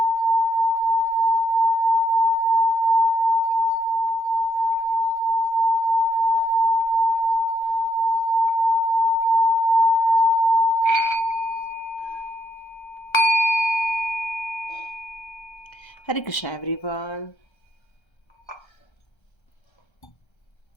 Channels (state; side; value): late; right; 1.3 ms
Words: हरे कृष्णा एवरीवन।